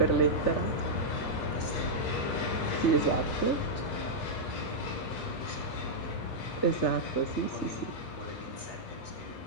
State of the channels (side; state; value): right; late; 3.4 ms